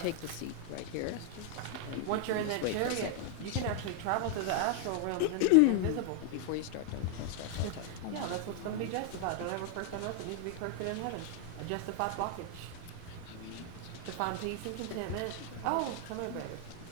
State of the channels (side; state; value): both; different; correlation 0.00